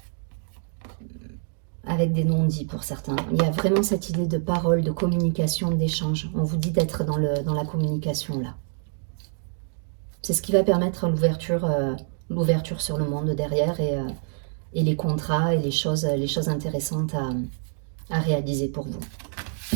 avec des non-dits pour certains. Il y a vraiment cette idée de parole, de communication, d'échange. On vous dit d'être dans la communication là. C'est ce qui va permettre l'ouverture sur le monde derrière et les contrats et les choses intéressantes à réaliser pour vous.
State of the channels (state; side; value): silent; left; digital silence